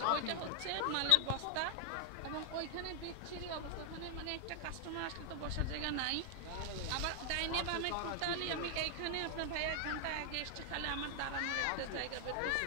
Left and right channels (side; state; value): both; different; correlation 0.00